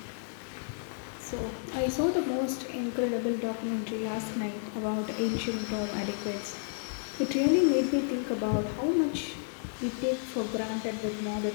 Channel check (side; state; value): right; silent; 57 dB below the other